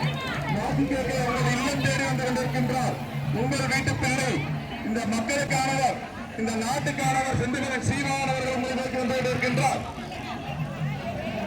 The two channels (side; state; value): both; identical; correlation 1.00